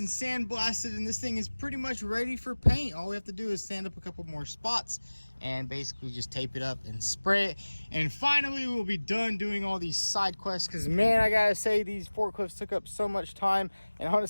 sandblasted, and this thing is pretty much ready for paint. All we have to do is sand up a couple more spots and basically just tape it up and spray it. And finally, we'll be done doing all these side quests, because man, I gotta say, these forklifts took up so much time, and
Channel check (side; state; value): both; inverted; correlation -1.00